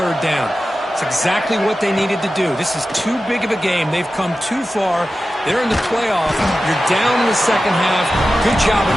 down. It's exactly what they needed to do. This is too big of a game. They've come too far. They're in the playoff. You're down in the second half. Good job of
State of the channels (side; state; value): both; normal; correlation 0.93